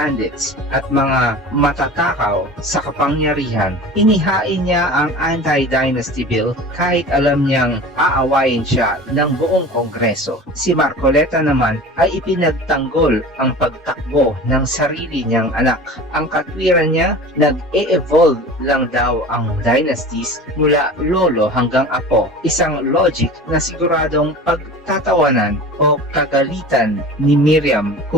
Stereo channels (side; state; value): both; normal; correlation 0.37